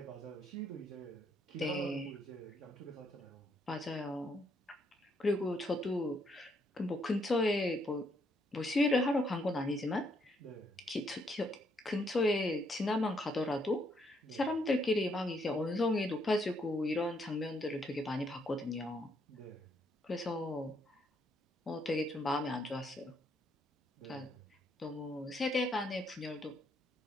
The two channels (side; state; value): both; normal; correlation 0.73